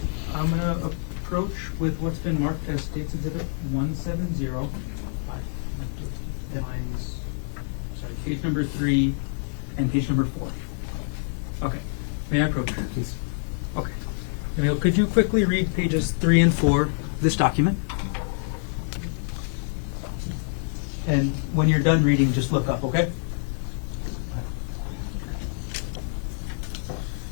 I'm going to approach with what's been marked as State's Exhibit 170. I direct you to lines, page number 3 and page number 4. Okay, may I approach? Yes. Okay. Emile, could you quickly read pages 3 and 4 of this document? And when you're done reading, just look up, okay?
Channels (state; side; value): silent; right; digital silence